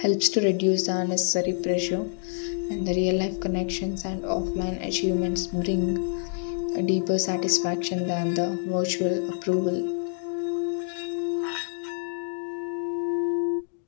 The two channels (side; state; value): right; silent; digital silence